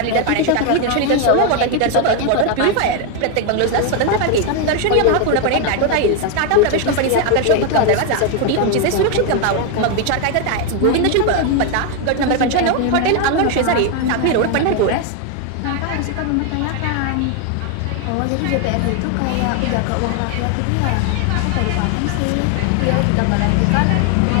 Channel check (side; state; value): both; different; correlation 0.01